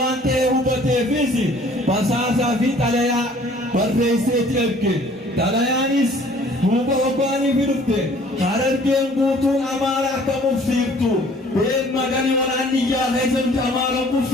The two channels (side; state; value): both; normal; correlation 0.54